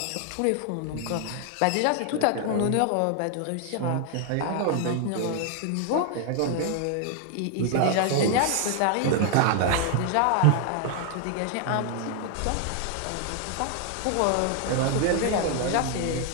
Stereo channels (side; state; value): both; different; correlation 0.00